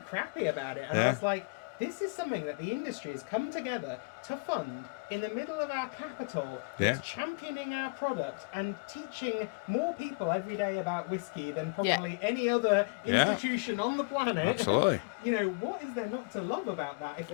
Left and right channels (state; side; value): quieter; right; 35.4 dB